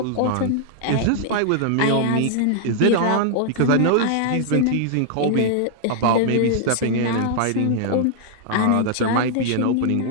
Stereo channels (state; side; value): different; both; correlation -0.01